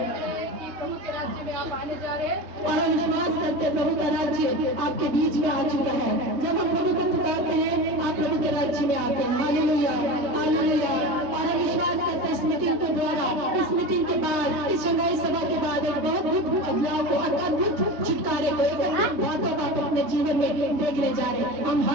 प्रभु के राज्य में आप आने जा रहे हैं और हम विश्वास करते हैं प्रभु का राज्य आपके बीच में आ चुका है। जब हम प्रभु को पुकारते हैं, आप प्रभु के राज्य में आते हैं। Hallelujah, hallelujah. और हम विश्वास करते हैं, स्मृति मीटिंग के द्वारा, इस मीटिंग के बाद, इस शंघाई सभा के बाद एक बहुत अद्भुत बदलाव को, अद्भुत छुटकारे को, एक अद्भुत बातों को आप अपने जीवन में देखने जा रहे हैं। हम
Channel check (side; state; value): left; late; 3.2 ms